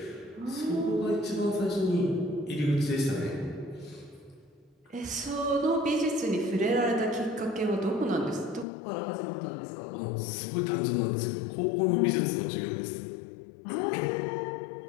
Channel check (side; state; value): right; drops out; at 8.7 s